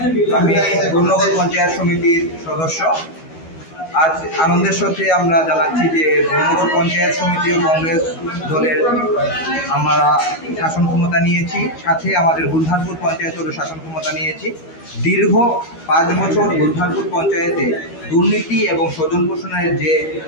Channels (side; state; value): right; late; 12 ms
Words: আমি গুরনগর পঞ্চায়েত সমিতির সদস্য। আজ আনন্দের সাথে আমরা জানাচ্ছি যে গুরনগর পঞ্চায়েত সমিতি ও কংগ্রেস দলের আমরা শাসন ক্ষমতা নিয়েছি, সাথে আমাদের বুলহারপুর পঞ্চায়েতেরও শাসন ক্ষমতা নিয়েছি। দীর্ঘ 5 বছর বুলহারপুর পঞ্চায়েতে দুর্নীতি এবং স্বজন পোষণের যে